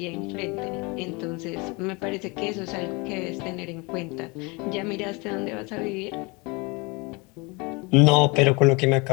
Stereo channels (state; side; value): quieter; right; 27.7 dB